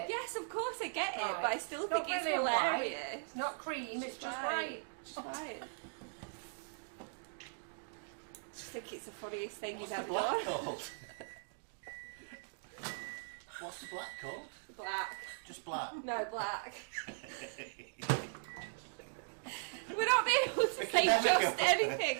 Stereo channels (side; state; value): left; silent; digital silence